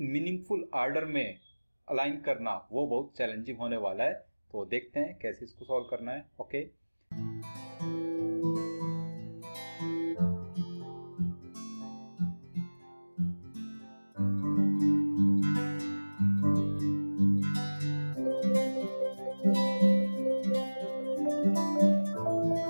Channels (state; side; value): inverted; both; correlation -1.00